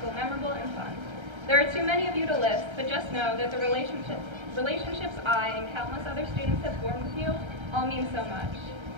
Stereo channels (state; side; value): late; left; 1.3 ms